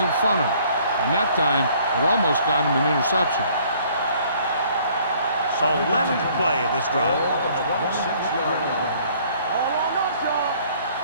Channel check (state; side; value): inverted; both; correlation -0.59